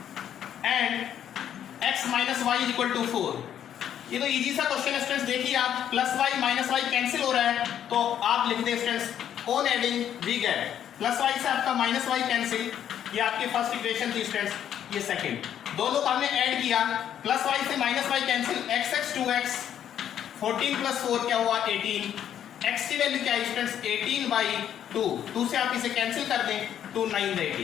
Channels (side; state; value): right; quieter; 9.9 dB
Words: and x minus y is equal to 4। ये तो इजी सा क्वेश्चन है स्टूडेंट्स, देखिए आप plus y minus y cancel हो रहा है, तो आप लिख दें students on adding we get plus y से आपका माइनस वाई कैंसिल, ये आपकी फर्स्ट इक्वेशन थी स्टूडेंट्स, ये सेकंड। दोनों को हमने ऐड किया, प्लस वाई से minus y cancel, x 2x 14 plus 4 क्या हुआ 18, x की वैल्यू क्या है स्टूडेंट्स 18/2, 2 से आप इसे कैंसिल कर दें, 2 9